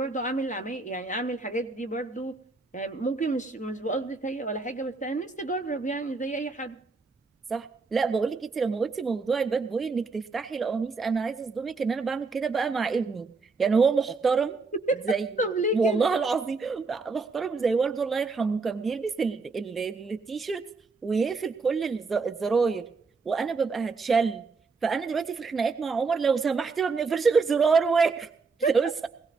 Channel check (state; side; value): quieter; left; 4.4 dB